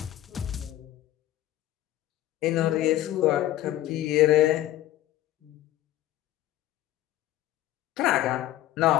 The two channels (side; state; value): right; quieter; 14.0 dB